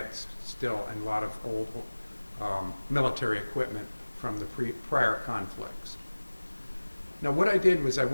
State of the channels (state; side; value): inverted; both; correlation -1.00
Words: still, and a lot of old military equipment from the prior conflicts. Now what I did was I